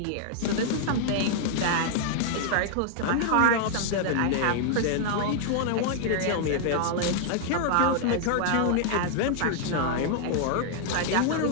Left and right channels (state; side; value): different; both; correlation 0.00